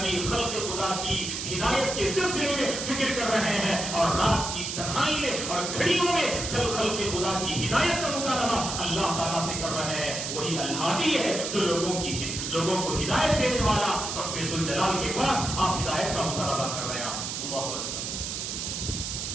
خلق خدا کی ہدایت کے سلسلے میں فکر کر رہے ہیں، اور رات کی تنہائی میں اور گھڑیوں میں خلق خدا کی ہدایت کا مطالبہ اللہ تعالیٰ سے کر رہے ہیں۔ وہی الہادی ہے جو لوگوں کو ہدایت دینے والا رب ذوالجلال کے پاس آپ ہدایت کا مطالبہ کر رہے ہیں۔ اللہ اکبر۔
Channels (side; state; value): right; noise; hiss, 4 dB below the sound